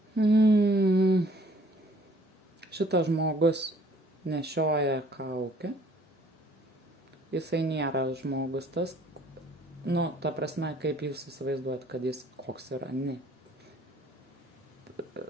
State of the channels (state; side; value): normal; both; correlation 0.58